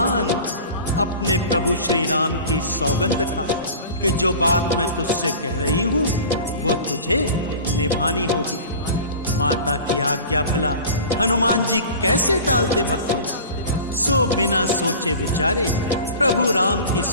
अपने प्रभु श्री राम की सौगंध खा कि जो बात मैं तुझसे कह रही हूं वो तुझे निभानी होगी। माता की आज्ञा भला हनुमान जी कैसे टालते भक्तों, सो बिना सोचे विचारे प्रभु राम की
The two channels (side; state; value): both; inverted; correlation -0.38